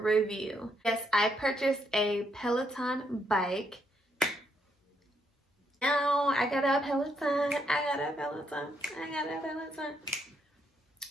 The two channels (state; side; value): normal; both; correlation 0.76